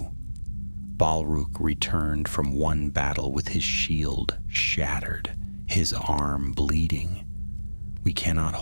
Balrog returned from one battle with his shield shattered, his arm bleeding. "We cannot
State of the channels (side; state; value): both; inverted; correlation -1.00